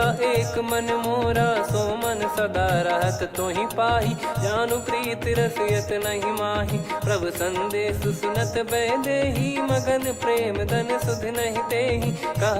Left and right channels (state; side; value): identical; both; correlation 1.00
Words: एक मन मोरा। सो मन सदा रहत तोहि पाहि, जानु प्रीत रसियत नहीं माहि। प्रभु संदेश सुनत भय देहि, मगन प्रेम धन सुध नहीं तेहि।